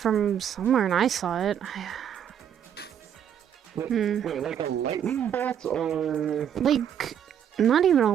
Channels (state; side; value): quieter; left; 9.1 dB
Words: somewhere and I saw it. Wait, like a lightning bolt or... Like, not even